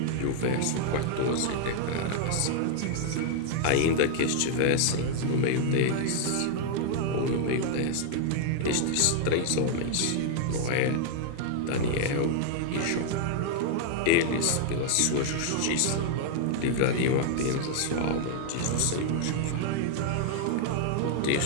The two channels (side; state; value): both; different; correlation -0.01